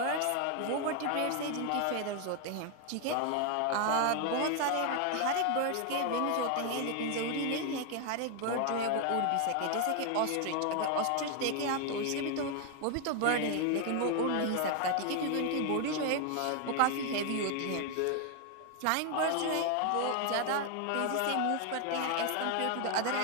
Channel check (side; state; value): both; different; correlation 0.00